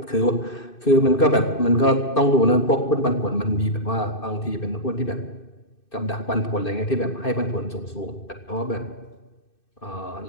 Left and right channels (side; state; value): right; late; 2.6 ms